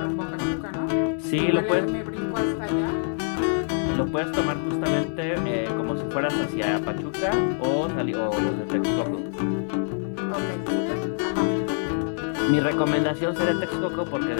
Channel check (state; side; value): silent; right; digital silence